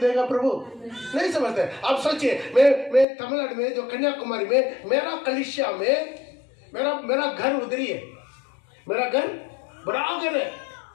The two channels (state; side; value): drops out; right; at 3.1 s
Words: प्रभु? नहीं समझते। आप सोचिए, मैं तमिलनाडु में, जो कन्याकुमारी में, मेरा कलीसिया में मेरा घर उधर ही है। मेरा घर बड़ा घर है,